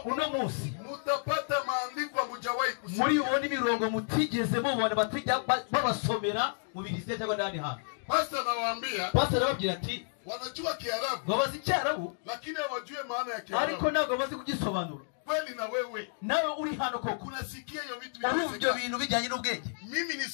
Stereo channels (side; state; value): right; silent; digital silence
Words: Uno munsi mutapata maandiko mujawahi kusoma. muri ubundi mirongo mutigeze mubona batijya babasomera mu Bibiliya cyangwa ndani hano. Pastor nawaambia. Pastor arababwira ati Wanajua Kiarabu. babazi Cyarabu Lakini hawajui maana ya Kiarabu. ariko ntabwo bazi kugisobanura. Kweli na wewe. Nawe uri hano koko. Unasikia hiyo vitu Urumva bintu bijyanye n'ubwenge. Mimi